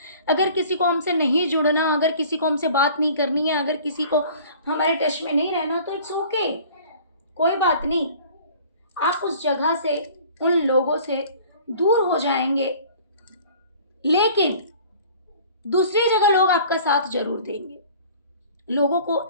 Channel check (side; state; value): both; inverted; correlation -0.48